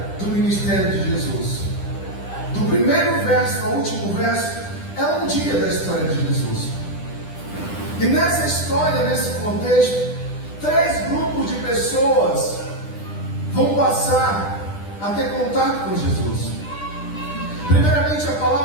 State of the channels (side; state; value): right; late; 10 ms